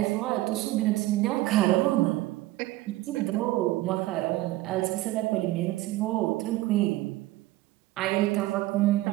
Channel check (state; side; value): quieter; left; 17.5 dB